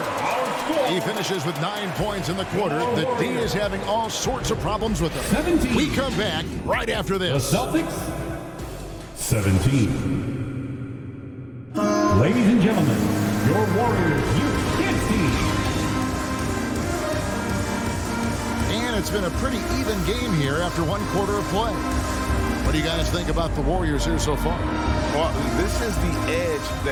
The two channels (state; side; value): identical; both; correlation 1.00